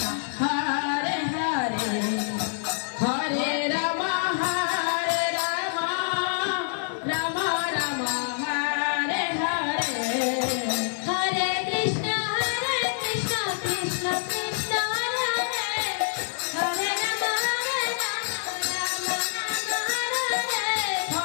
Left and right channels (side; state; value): right; silent; digital silence